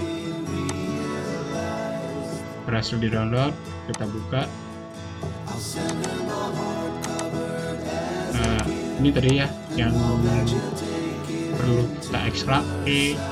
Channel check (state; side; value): identical; both; correlation 1.00